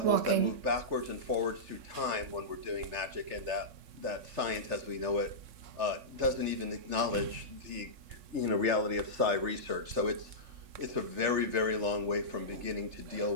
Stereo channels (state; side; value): late; left; 3.4 ms